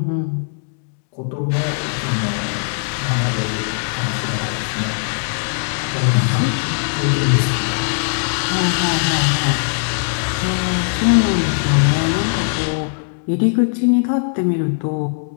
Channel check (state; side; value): silent; right; 66 dB below the other